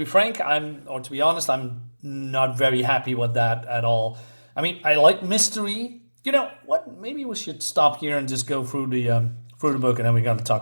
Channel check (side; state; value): both; inverted; correlation -1.00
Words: frank, I'm not very happy with that at all. I mean, I like mystery. You know what? Maybe we should stop here and just go through the book, and then we got to